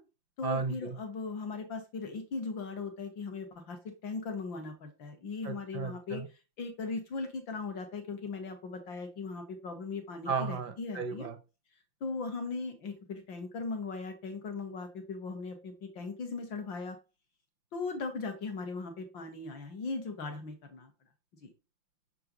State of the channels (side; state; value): right; late; 5.8 ms